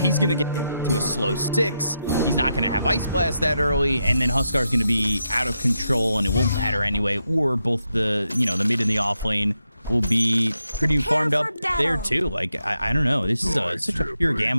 gonna get to a slow 6. He's not gonna have Ice Blast that early, and then Huskar's gonna be out of control, and it won't matter anyway. Or both the the mid and the off lane will be pretty farmed up there too. Like, I don't know. This is such a pure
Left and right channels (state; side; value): inverted; both; correlation -0.84